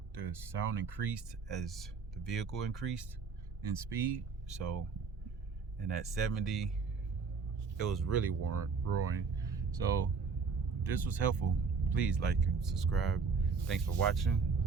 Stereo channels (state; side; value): quieter; left; 5.1 dB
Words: sound increased as the vehicle increased in speed. So, and at 70, it was really roaring. So if this was helpful, please like and subscribe. Thanks for watching.